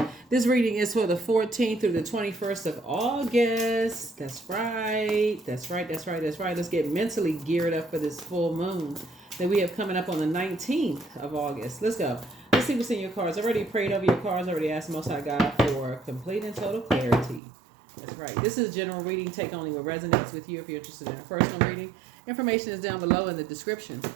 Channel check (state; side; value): drops out; left; at 17.4 s